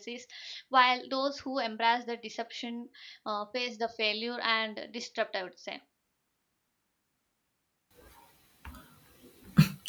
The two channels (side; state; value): both; identical; correlation 1.00